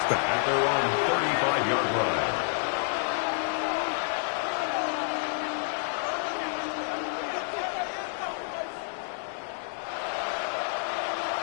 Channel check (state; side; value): silent; right; 59 dB below the other